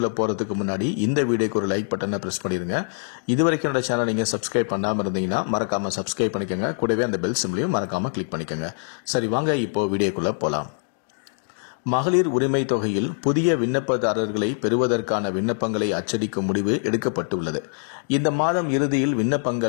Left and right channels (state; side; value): silent; right; digital silence